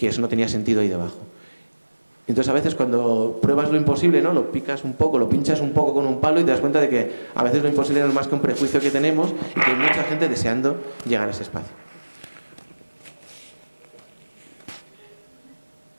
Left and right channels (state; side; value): inverted; both; correlation -1.00